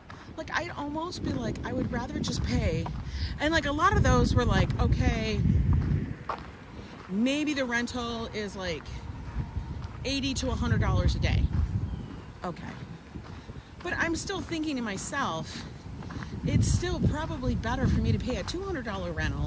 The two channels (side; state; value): both; identical; correlation 1.00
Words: Like, I'd almost be like, I would rather just pay. And like, a lot of those were like, okay, maybe the rental is like $80 to $100 a day. Okay. But I'm still thinking to myself, it's still probably better for me to pay a $200